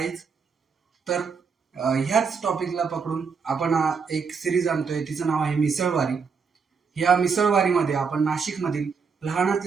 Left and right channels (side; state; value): left; quieter; 5.5 dB